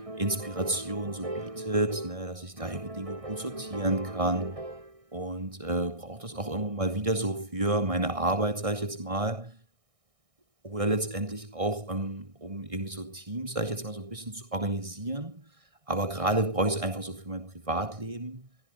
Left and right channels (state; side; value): late; left; 1.6 ms